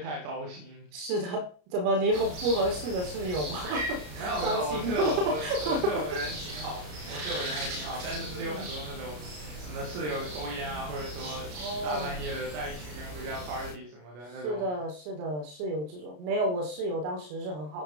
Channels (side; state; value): left; late; 33 ms